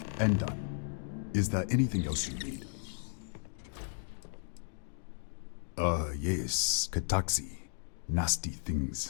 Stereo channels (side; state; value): right; silent; digital silence